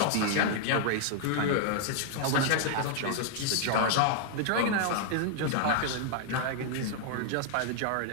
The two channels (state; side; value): different; both; correlation 0.00